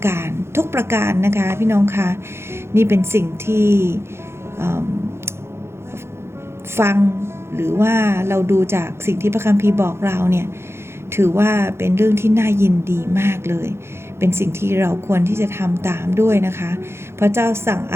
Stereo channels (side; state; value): left; late; 0.12 ms